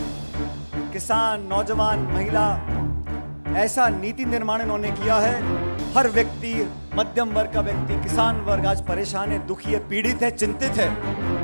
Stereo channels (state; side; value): inverted; both; correlation -1.00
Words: किसान, नौजवान, महिला, ऐसा नीति निर्माण इन्होंने किया है। हर व्यक्ति, मध्यम वर्ग का व्यक्ति, किसान वर्ग आज परेशान है, दुखी है, पीड़ित है, चिंतित है।